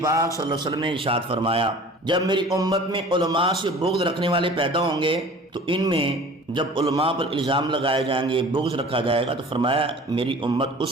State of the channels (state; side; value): normal; both; correlation 0.44